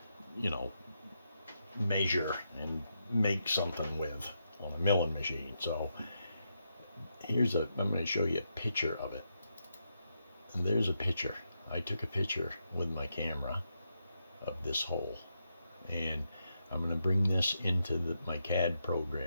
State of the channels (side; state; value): both; inverted; correlation -0.83